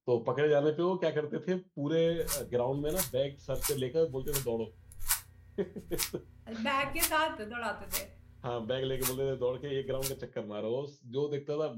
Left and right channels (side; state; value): both; identical; correlation 1.00